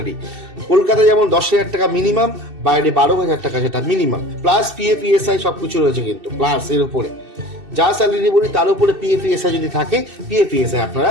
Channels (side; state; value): left; late; 2.7 ms